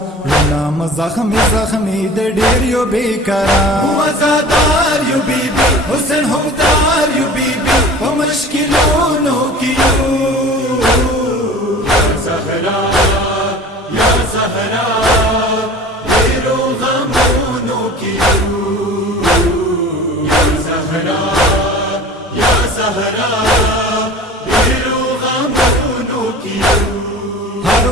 नाम जख्मी जख्मी दे डिरियो बेकरार मुआज़ादार यू बीबी हुस्न हमदार यू बीबी वो मुश्किलों की या ज़हरा या ज़हरा तेरो गमों की या ज़हरा या ज़हरा तेरो गमों की हर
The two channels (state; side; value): normal; both; correlation 0.41